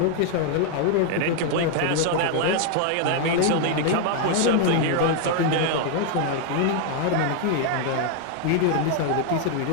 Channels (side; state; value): both; different; correlation 0.00